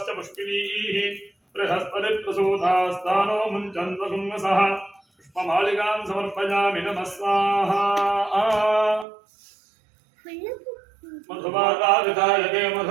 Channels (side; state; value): left; drops out; at 9.1 s